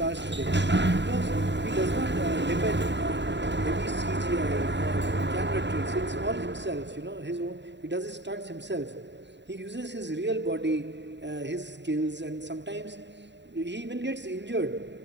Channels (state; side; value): late; left; 0.52 ms